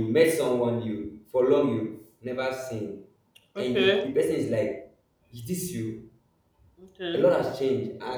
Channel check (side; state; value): both; identical; correlation 1.00